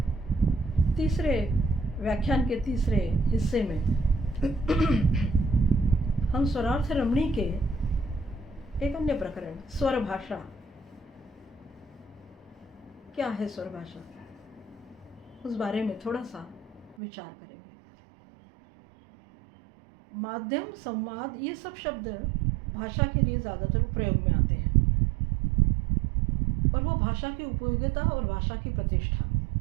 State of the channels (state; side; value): drops out; left; at 16.9 s